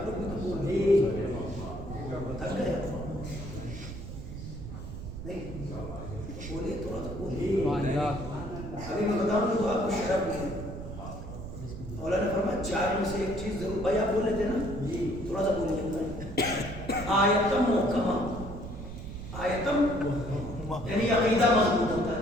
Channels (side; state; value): right; noise; rumble, 9 dB below the sound